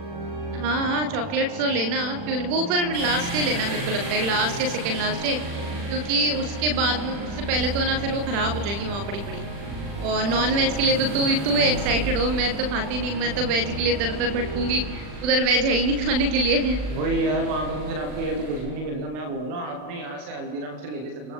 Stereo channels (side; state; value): left; late; 40 ms